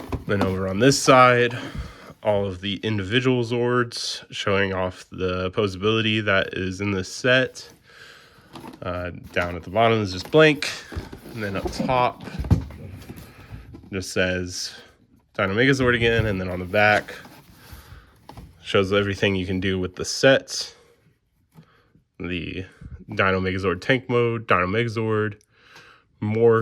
Then over on this side, all of the individual Zords showing off the posability that is in this set. Down at the bottom is just blank, and then up top just says Dino Megazord again, and then on the back shows everything you can do with the set. The Dino Megazord tank mode, Dino Megazord,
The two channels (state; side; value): identical; both; correlation 1.00